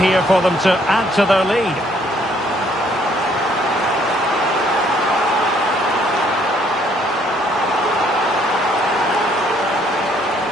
for them to add to their lead.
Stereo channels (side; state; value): both; normal; correlation 0.65